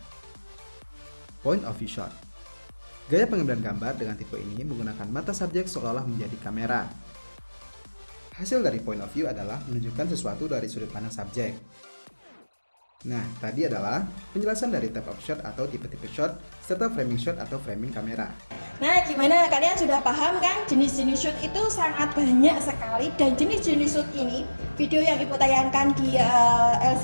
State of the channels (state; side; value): inverted; both; correlation -1.00